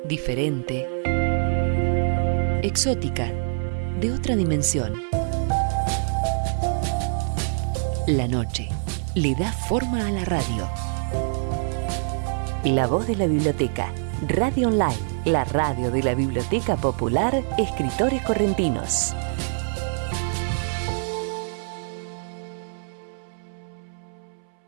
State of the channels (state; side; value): silent; left; 62 dB below the other